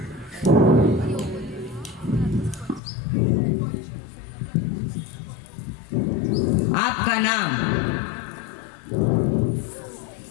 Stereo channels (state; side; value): drops out; right; at 2.8 s